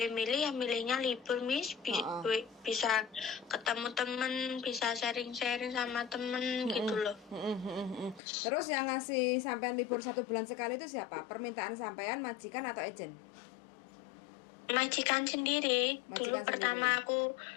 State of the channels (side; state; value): right; drops out; at 8.2 s